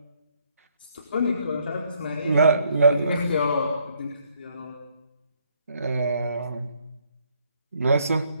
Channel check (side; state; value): both; inverted; correlation -0.68